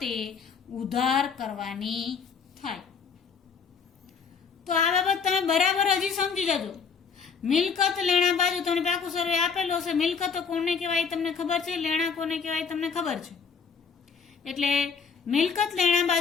ઉધાર કરવાની થાય. તો આ બાબત તમે બરાબર હજી સમજી જજો. મિલકત લેણા બાજુ તમને પાકું સર્વે આપેલો હશે. મિલકતો કોને કહેવાય તમને ખબર છે, લેણા કોને કહેવાય તમને ખબર છે. એટલે મિલકત લેણા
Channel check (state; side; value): quieter; right; 5.9 dB